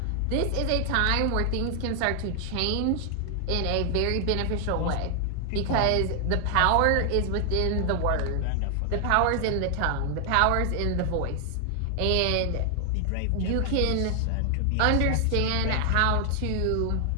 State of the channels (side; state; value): both; different; correlation 0.00